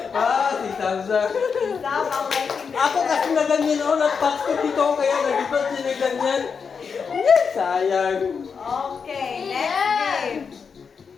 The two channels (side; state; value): right; quieter; 5.9 dB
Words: Ah, si Samsa. Stop ang lighting. Ako kasi na ganyan ako. Nag-pass ko dito kaya nag-ibat siya na ganyan. Sayang. Okay.